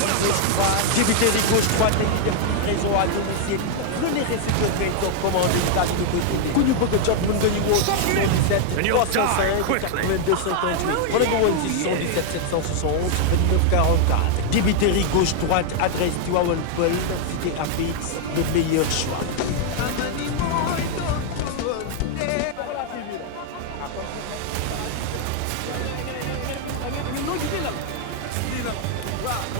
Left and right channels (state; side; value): different; both; correlation 0.00